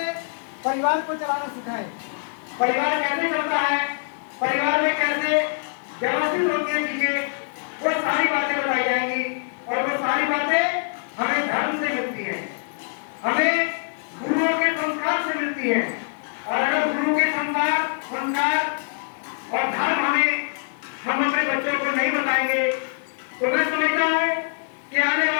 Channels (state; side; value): silent; right; 62 dB below the other